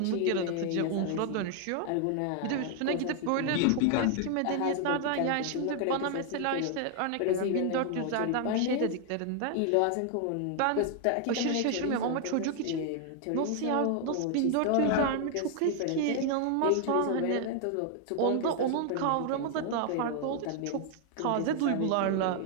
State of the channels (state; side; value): different; both; correlation 0.00